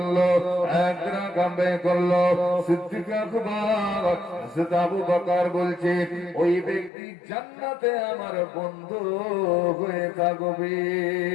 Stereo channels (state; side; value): drops out; right; at 6.9 s